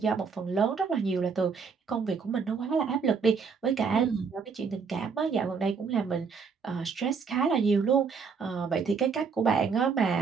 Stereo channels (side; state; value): left; quieter; 5.6 dB